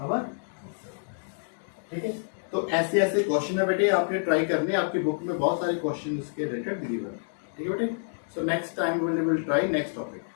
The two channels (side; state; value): right; silent; digital silence